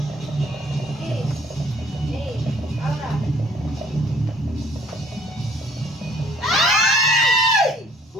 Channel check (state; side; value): normal; both; correlation 0.58